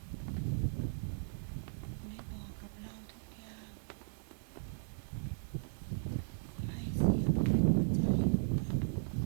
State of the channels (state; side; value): silent; left; 53 dB below the other